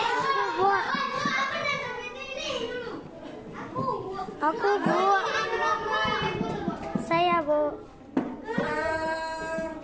Aku Bu. Saya Bu.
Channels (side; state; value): both; identical; correlation 1.00